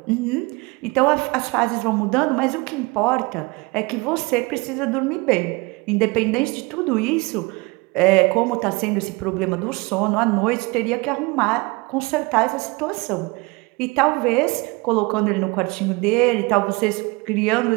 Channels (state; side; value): quieter; left; 25.8 dB